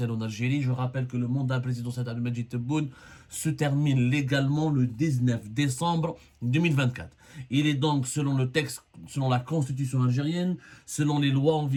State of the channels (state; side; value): identical; both; correlation 1.00